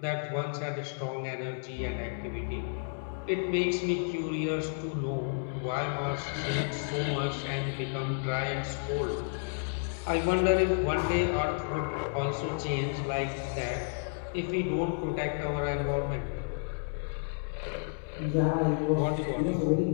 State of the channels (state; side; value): silent; right; digital silence